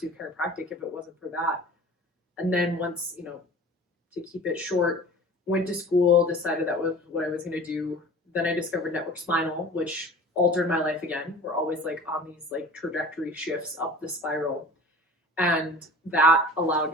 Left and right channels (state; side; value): normal; both; correlation 0.41